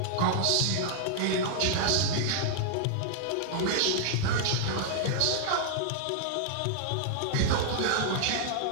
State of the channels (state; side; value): different; both; correlation -0.01